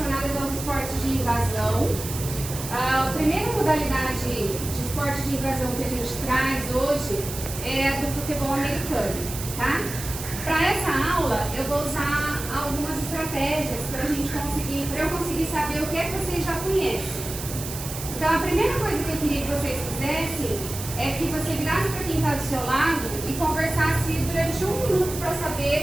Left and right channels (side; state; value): right; noise; hiss, 9 dB below the sound